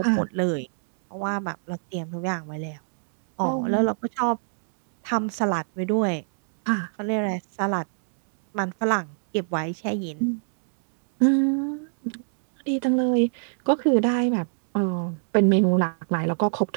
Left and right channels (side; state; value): left; silent; digital silence